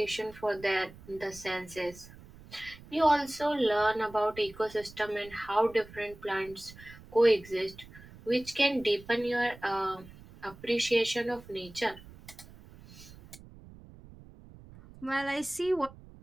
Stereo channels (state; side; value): noise; right; rumble, 20 dB below the sound